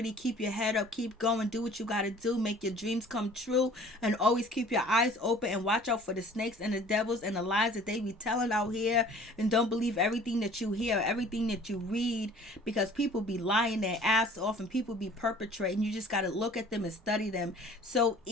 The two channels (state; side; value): normal; both; correlation 0.50